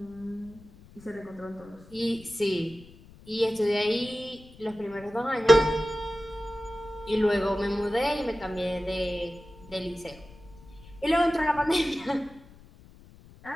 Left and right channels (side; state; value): left; noise; rumble, 22 dB below the sound